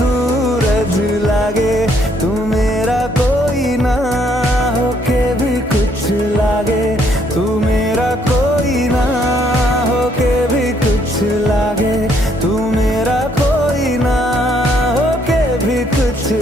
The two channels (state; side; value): normal; both; correlation 0.69